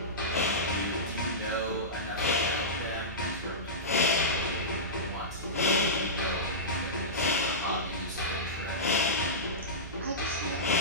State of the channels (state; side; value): noise; right; hum, 12 dB below the sound